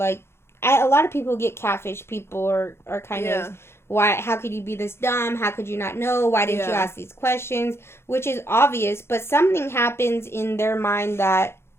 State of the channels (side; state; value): right; late; 0.12 ms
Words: a lot of people who get catfish, people are kind of, how could you be this dumb? How could you not know? Why didn't you ask these questions? Which is obvious, but something happens in their mind that